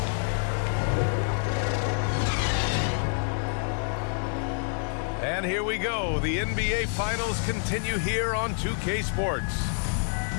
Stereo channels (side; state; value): right; silent; 60 dB below the other